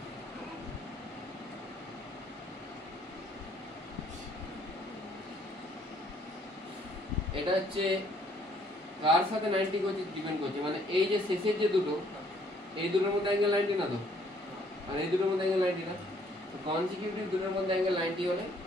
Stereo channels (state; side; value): normal; both; correlation 0.64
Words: এটা হচ্ছে কার সাথে 90 করছে ডিপেন্ড করছে, মানে এই যে শেষের যে দুটো, এই দুটোর মধ্যে অ্যাঙ্গেল 90 না তো, আর এই দুটোর মধ্যে অ্যাঙ্গেল 90 না, তো কনসিকিউটিভ দুটোর মধ্যে অ্যাঙ্গেল 90 হলে